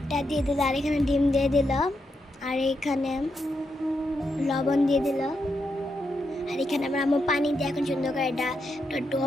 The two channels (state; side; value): normal; both; correlation 0.83